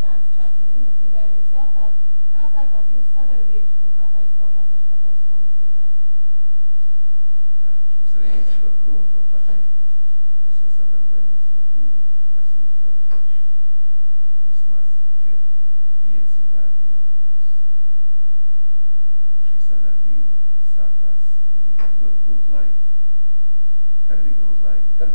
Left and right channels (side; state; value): both; inverted; correlation -1.00